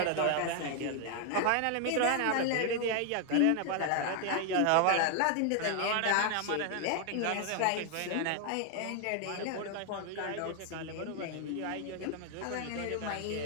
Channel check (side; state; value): both; different; correlation 0.00